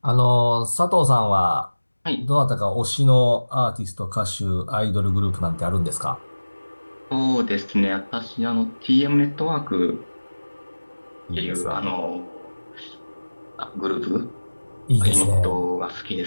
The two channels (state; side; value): inverted; both; correlation -1.00